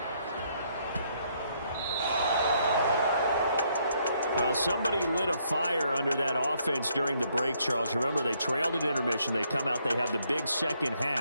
Well, somebody lit a fire under that offense during the break, Charles. Remember, they trailed at intermission. They come out, they have the big second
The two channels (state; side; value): inverted; both; correlation -0.71